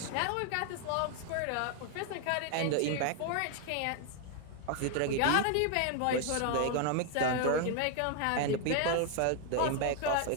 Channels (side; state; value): both; different; correlation 0.00